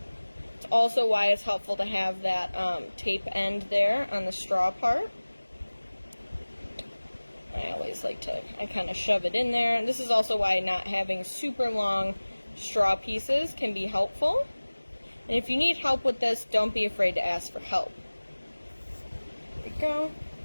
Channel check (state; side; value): inverted; both; correlation -1.00